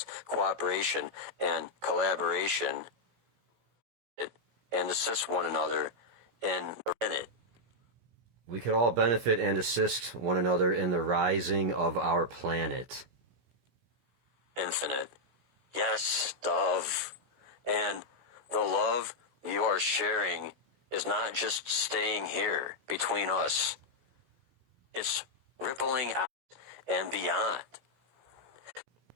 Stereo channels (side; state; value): left; late; 16 ms